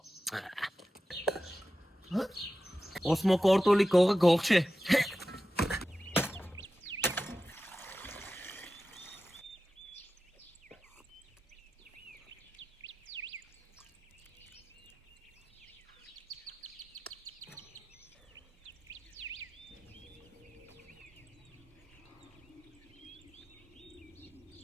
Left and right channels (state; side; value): normal; both; correlation 0.93